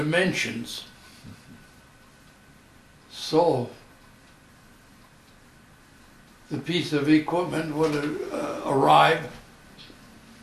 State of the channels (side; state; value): both; identical; correlation 1.00